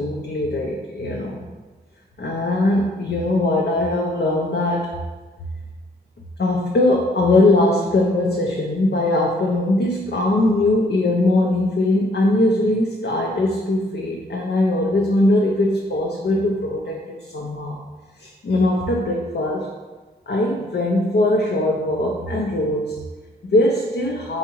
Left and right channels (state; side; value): normal; both; correlation 0.63